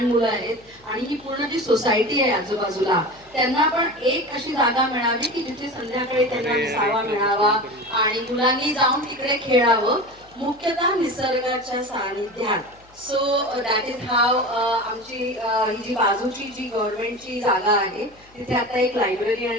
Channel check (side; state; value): left; noise; hum, 28 dB below the sound